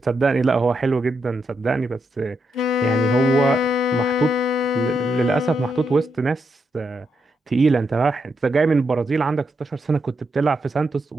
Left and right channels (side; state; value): both; normal; correlation 0.82